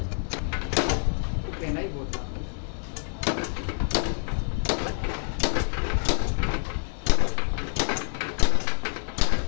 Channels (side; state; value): right; silent; 60 dB below the other